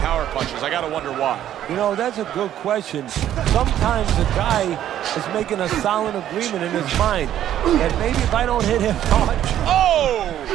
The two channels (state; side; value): quieter; left; 11.4 dB